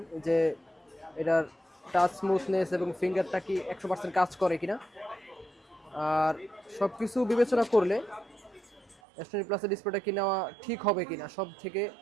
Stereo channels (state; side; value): drops out; left; at 9.0 s